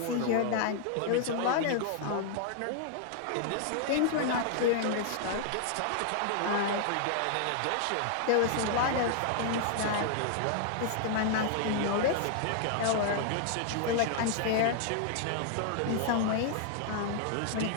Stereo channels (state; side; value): different; both; correlation -0.01